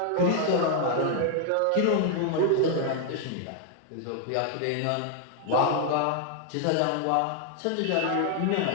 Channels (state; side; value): different; both; correlation 0.00